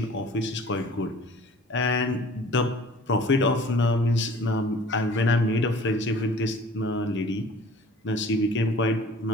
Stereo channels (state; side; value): normal; both; correlation 0.48